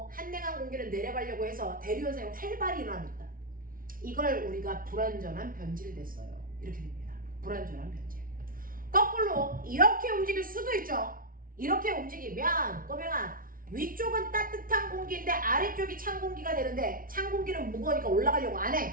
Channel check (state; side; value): late; left; 0.41 ms